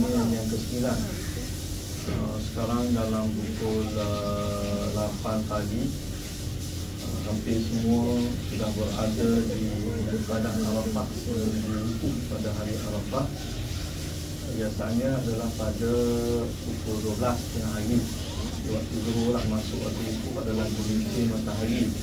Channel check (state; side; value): identical; both; correlation 1.00